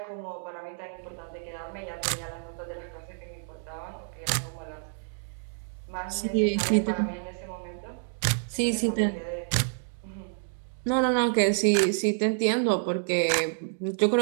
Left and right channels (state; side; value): silent; left; digital silence